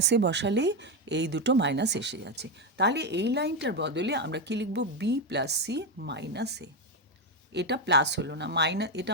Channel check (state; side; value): normal; both; correlation 0.09